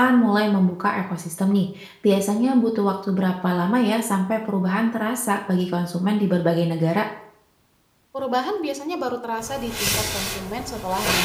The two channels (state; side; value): identical; both; correlation 1.00